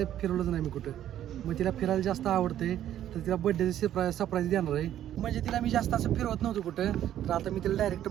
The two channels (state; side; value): quieter; left; 11.5 dB